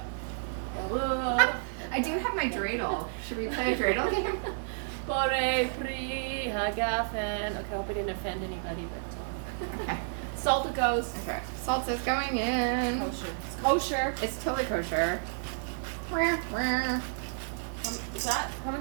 I do have my dreidel. Should we play a dreidel game? Bore pri hagafen. Okay, I hope I didn't offend anybody, but Okay. salt it goes. Okay. Salt is going in. Kosher. It's kosher. It's totally kosher. Wah, wah. Is that? How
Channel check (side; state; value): left; silent; digital silence